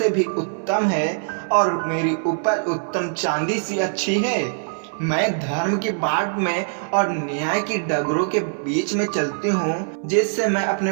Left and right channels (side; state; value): left; silent; 64 dB below the other